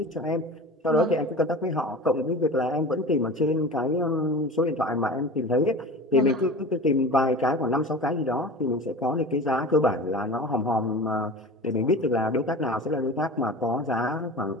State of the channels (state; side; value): normal; both; correlation 0.34